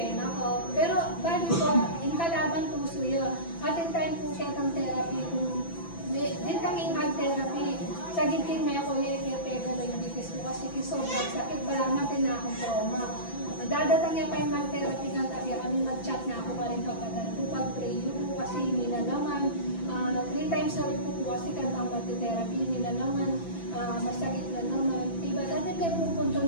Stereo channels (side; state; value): right; late; 5.9 ms